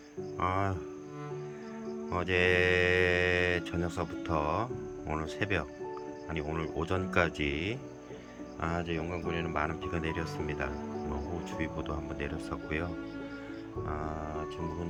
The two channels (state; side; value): identical; both; correlation 1.00